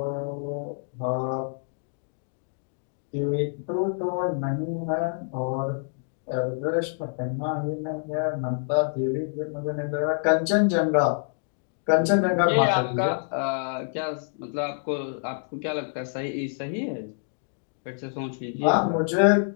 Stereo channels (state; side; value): silent; right; digital silence